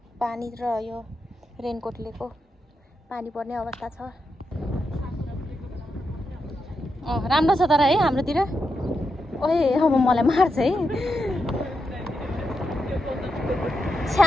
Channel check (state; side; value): normal; both; correlation 0.85